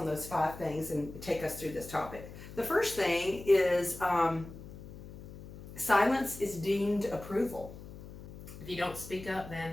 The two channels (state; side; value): noise; left; hum, 14 dB below the sound